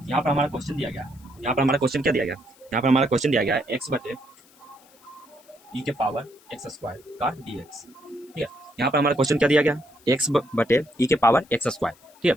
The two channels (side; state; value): left; noise; hiss, 28 dB below the sound